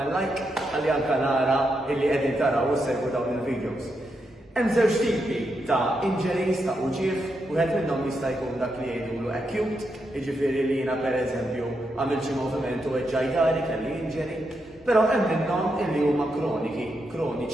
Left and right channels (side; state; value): both; normal; correlation 0.83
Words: like ħalli anke nara illi qegħdin taraw u segwu dawn il-videos. Hemm żewġ tipi ta' injuries ta' uġieħ, wieħed minnhom jista' jkun dak li jgħidulu acute, jiġifieri li jiena pereżempju għamil xi moviment u eġġajdari kelli injury, però hemm minnhom illi huma